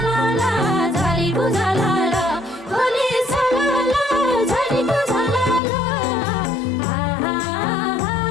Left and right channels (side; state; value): right; drops out; at 5.6 s